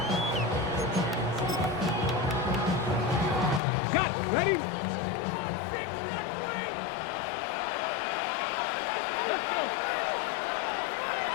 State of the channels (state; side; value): drops out; right; at 3.6 s